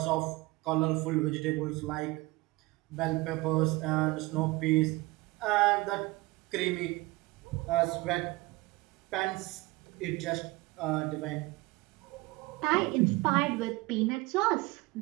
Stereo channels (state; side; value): quieter; left; 22.1 dB